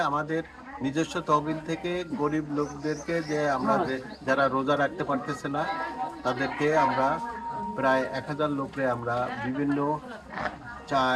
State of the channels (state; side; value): identical; both; correlation 1.00